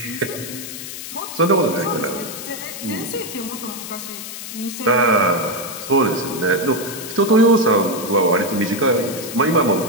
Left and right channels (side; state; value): left; noise; hiss, 10 dB below the sound